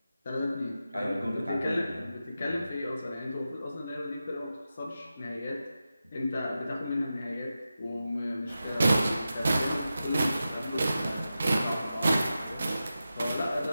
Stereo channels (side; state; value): both; inverted; correlation -0.91